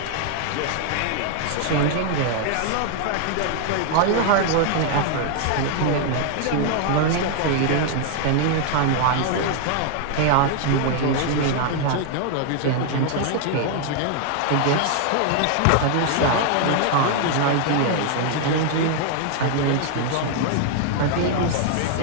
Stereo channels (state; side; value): different; both; correlation 0.00